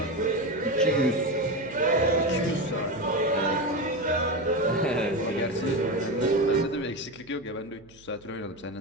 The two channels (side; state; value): right; noise; hum, 26 dB below the sound